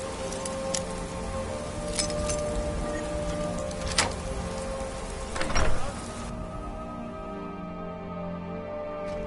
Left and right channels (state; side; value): identical; both; correlation 1.00